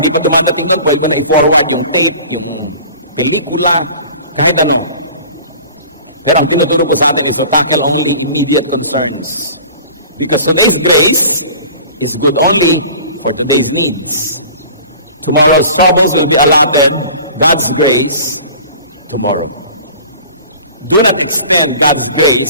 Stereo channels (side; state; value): both; inverted; correlation -0.43